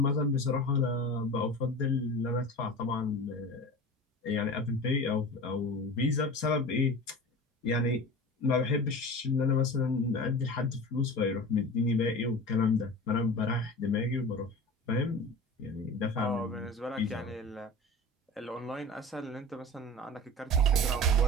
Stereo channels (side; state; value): both; normal; correlation 0.34